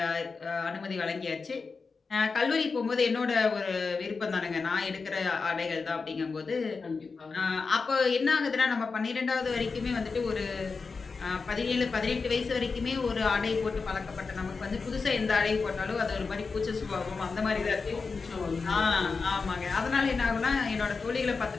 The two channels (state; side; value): quieter; right; 4.6 dB